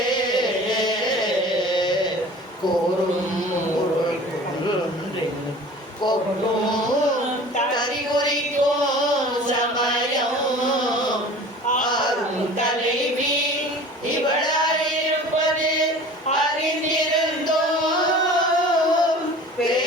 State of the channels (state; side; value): normal; both; correlation 0.42